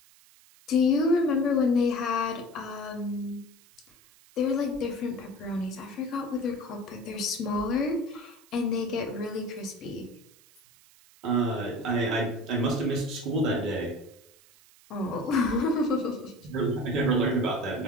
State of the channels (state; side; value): noise; right; hiss, 27 dB below the sound